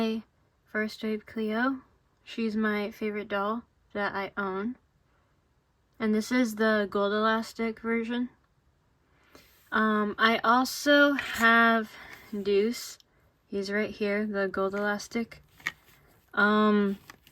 First Wave Cleo. She's my favorite doll that I own. And this is the gold elastic version. I also have Deuce. He's right here, the gold elastic.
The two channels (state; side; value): identical; both; correlation 1.00